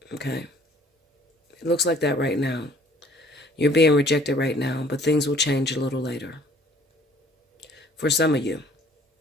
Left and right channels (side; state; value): both; normal; correlation 0.56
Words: Okay? It looks like that right now. You're being rejected right now, but things will change a little later. For some of you.